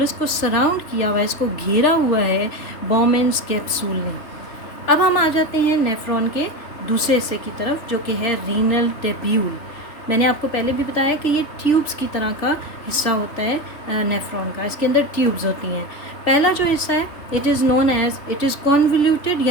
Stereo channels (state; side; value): late; right; 2.9 ms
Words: को सराउंड किया हुआ है, इसको घेरा हुआ है बॉमेन्स कैप्सूल ने। अब हम आ जाते हैं नेफ्रॉन के दूसरे हिस्से की तरफ जो कि है रीनल टेब्यूल। मैंने आपको पहले भी बताया कि ये ट्यूब्स की तरह का हिस्सा होता है नेफ्रॉन का, इसके अंदर ट्यूब्स होती हैं। पहला जो हिस्सा है it is known as, it is convoluted,